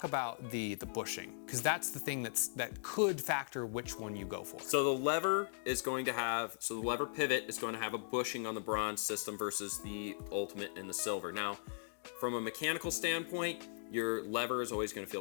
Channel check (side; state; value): right; silent; digital silence